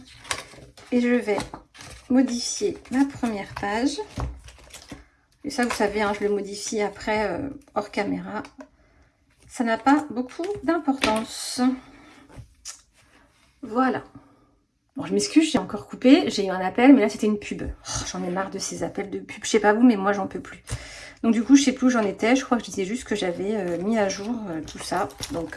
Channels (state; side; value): identical; both; correlation 1.00